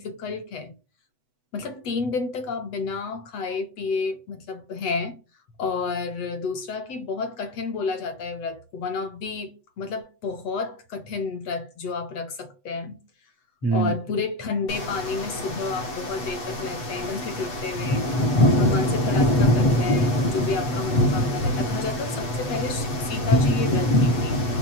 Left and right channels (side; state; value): right; late; 8.0 ms